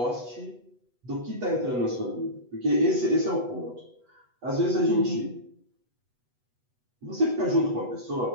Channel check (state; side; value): late; left; 8.1 ms